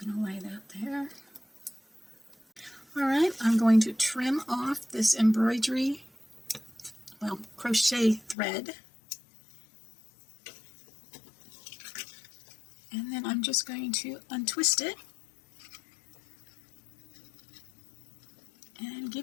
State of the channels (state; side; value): drops out; right; at 8.3 s